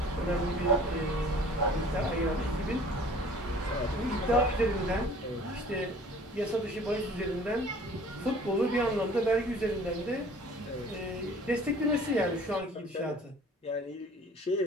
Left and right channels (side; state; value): both; normal; correlation 0.49